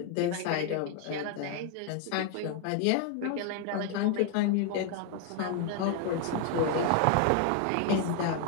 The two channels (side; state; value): both; different; correlation 0.00